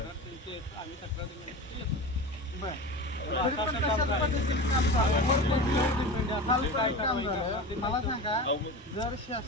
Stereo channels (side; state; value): both; normal; correlation 0.29